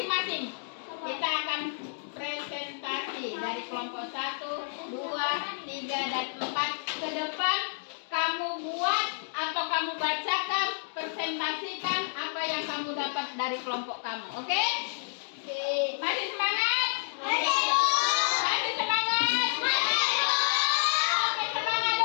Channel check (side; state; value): right; silent; digital silence